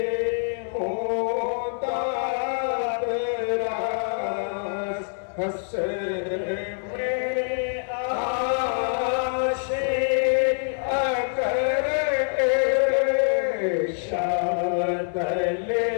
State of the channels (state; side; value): silent; right; 62 dB below the other